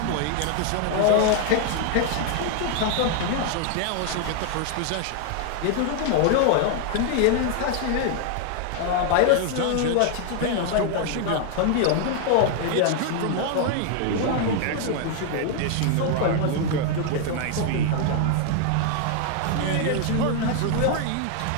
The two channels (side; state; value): both; different; correlation 0.00